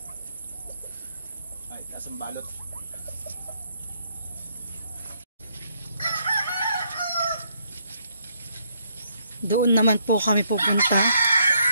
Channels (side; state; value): both; inverted; correlation -0.72